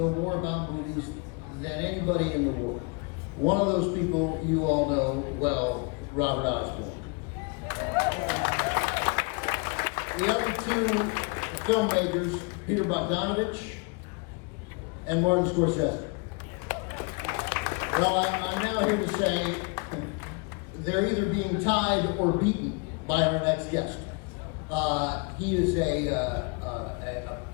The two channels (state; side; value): quieter; right; 32.0 dB